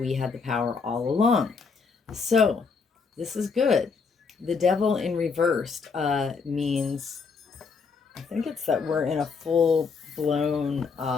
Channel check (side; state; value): right; quieter; 5.1 dB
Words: had the power all along. So this is good. The devil in reversed means, I think it's that we're in a full blown